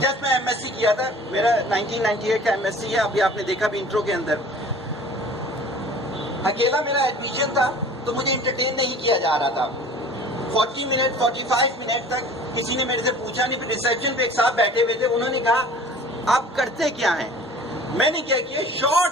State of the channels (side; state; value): both; normal; correlation 0.46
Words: جب میں ایم ایس سی کیا تھا، میرا 1998 کا ایم ایس سی ہے، ابھی آپ نے دیکھا بھی انٹرو کے اندر. اکیلا میرا ایڈمیشن تھا تو مجھے انٹرٹین نہیں کیا جا رہا تھا. 40 منٹ 45 منٹ تک کسی نے میرے سے پوچھا نہیں. پھر ریسیپشن پہ ایک صاحب بیٹھے ہوئے تھے، انہوں نے کہا آپ کرتے کیا ہیں؟ میں نے کیا کیا،